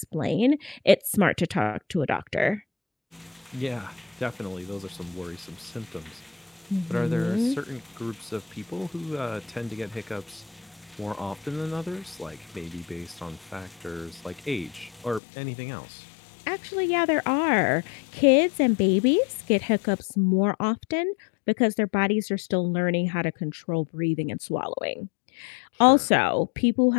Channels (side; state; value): right; drops out; at 15.2 s